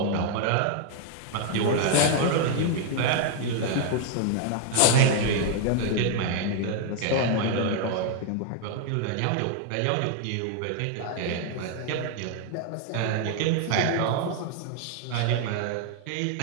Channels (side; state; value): both; different; correlation 0.00